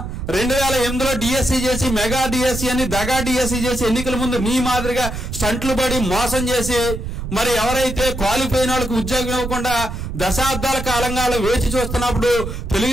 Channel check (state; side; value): noise; right; rumble, 6 dB below the sound